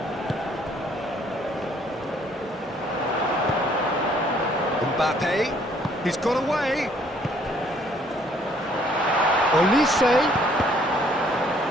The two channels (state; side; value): normal; both; correlation 0.63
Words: Mbappe. He's got away. Olise.